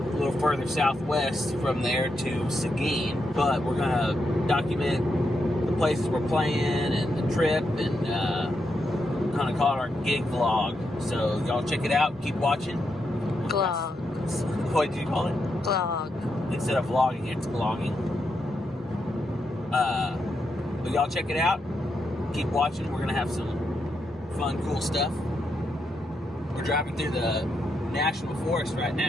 further southwest from there to Seguin. But we're going to document the places we're playing and the trip and kind of call it our gig vlog. So y'all check it out. Keep watching. Glog. What did you call it? Glog. Instead of vlogging, it's vlogging. But y'all check it out. Keep watching. We're going to have some fun, cool stuff. We're driving through the National Forest right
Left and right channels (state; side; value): normal; both; correlation 0.83